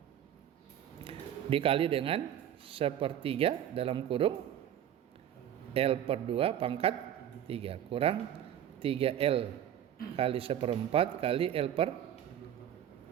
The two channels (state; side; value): quieter; left; 10.5 dB